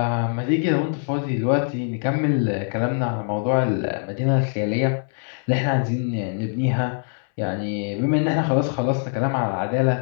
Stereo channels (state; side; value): silent; right; 63 dB below the other